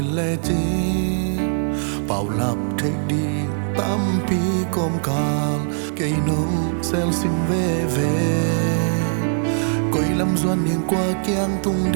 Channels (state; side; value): silent; left; digital silence